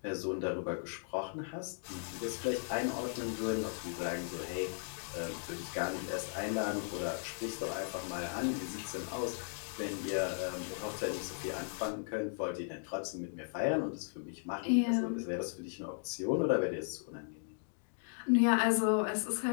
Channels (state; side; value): silent; right; digital silence